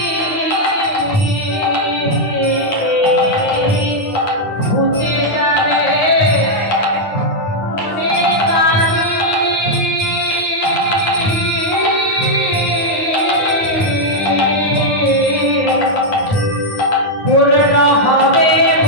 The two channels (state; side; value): late; right; 9.6 ms